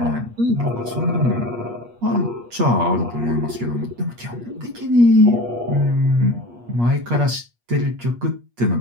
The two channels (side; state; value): left; late; 8.4 ms